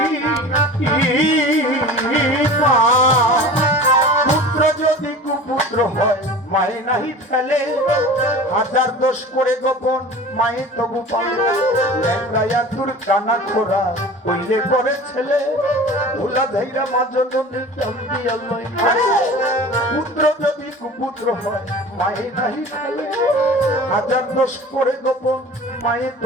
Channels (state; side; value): normal; both; correlation 0.39